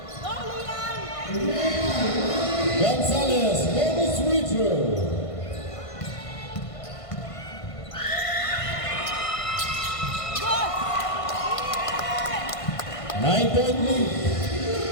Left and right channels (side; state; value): right; late; 1.5 ms